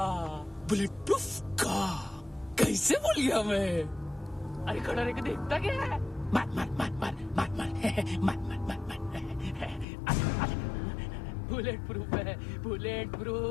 बुलेट प्रूफ का कैसे बोल गया मैं? अरे खड़ा रह के देखता क्या है? मार बुलेट प्रूफ है, बुलेट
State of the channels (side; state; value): right; drops out; at 9.9 s